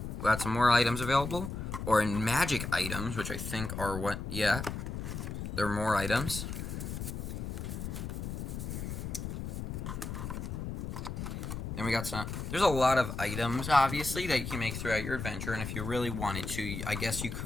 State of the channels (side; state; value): left; noise; rumble, 5 dB below the sound